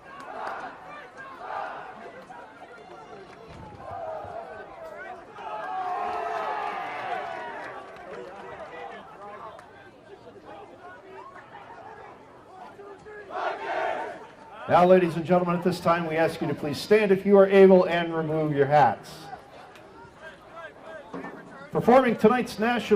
Now, ladies and gentlemen, at this time, we ask you to please stand if you are able and remove your hats. Performing tonight's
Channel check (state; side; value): identical; both; correlation 1.00